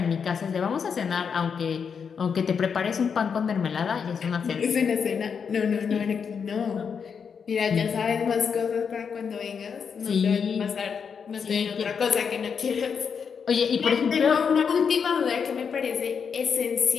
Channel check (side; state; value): right; quieter; 6.5 dB